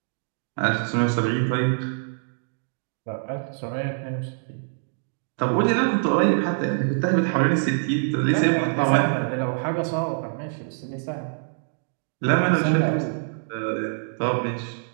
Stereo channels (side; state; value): left; silent; digital silence